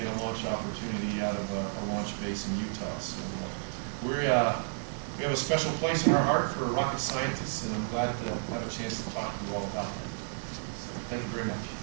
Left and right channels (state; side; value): silent; left; digital silence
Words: a launch opportunity out of a launch base in Utah. So we have a special place in our heart for rocket scientists, and I'm glad to have a chance to talk to you all about that. So thank you very much.